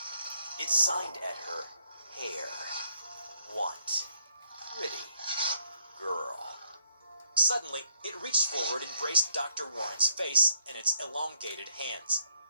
It signed at her hair. Want. Pretty. Girl. Suddenly, it reached forward and braced Dr. Warren's face in its elongated hands.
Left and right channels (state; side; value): inverted; both; correlation -0.71